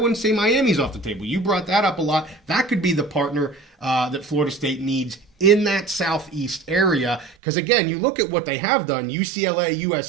say Miami's off the table. You brought that up a lot. That could be the partner that Florida State needs in that Southeast area. Because, again, you look at what they have done, UCLA,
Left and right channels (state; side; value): drops out; left; at 7.4 s